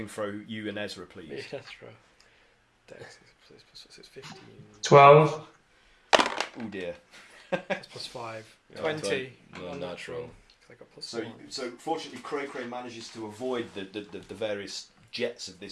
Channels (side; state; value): both; identical; correlation 1.00